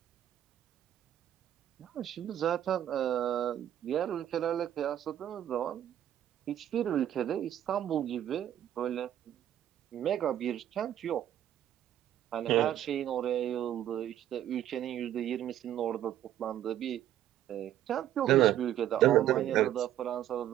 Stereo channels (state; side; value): quieter; left; 11.6 dB